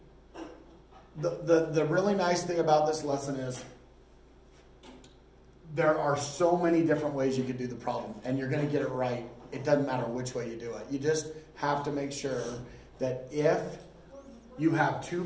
the really nice thing about this lesson is there are so many different ways you could do the problem, and you're going to get it right. It doesn't matter which way you do it. You just have to make sure that if you have two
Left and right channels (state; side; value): identical; both; correlation 1.00